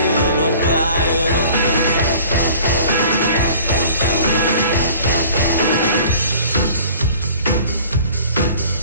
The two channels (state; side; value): inverted; both; correlation -0.49